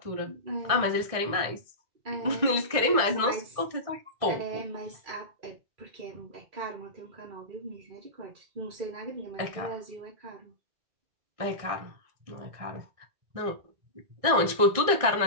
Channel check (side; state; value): left; late; 1.6 ms